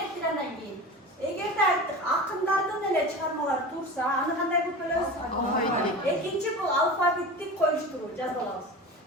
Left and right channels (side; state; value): both; normal; correlation 0.31